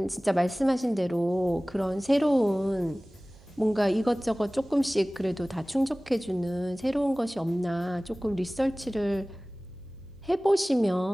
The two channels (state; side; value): noise; right; hum, 27 dB below the sound